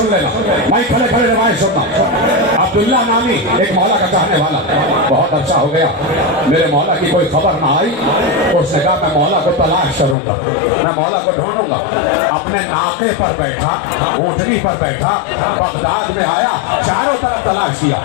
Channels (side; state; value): right; drops out; at 10.2 s